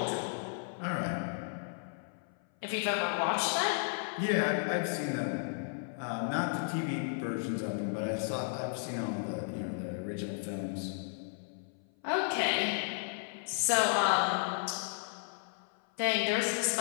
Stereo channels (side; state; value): right; silent; 55 dB below the other